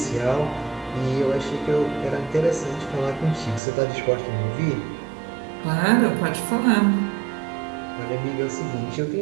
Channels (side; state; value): left; drops out; at 3.6 s